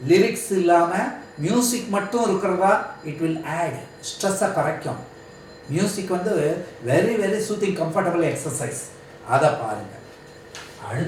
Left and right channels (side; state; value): both; identical; correlation 1.00